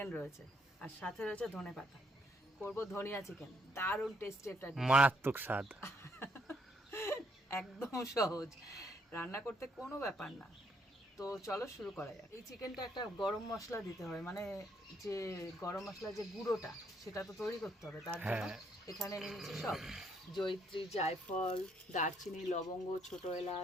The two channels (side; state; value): both; normal; correlation 0.71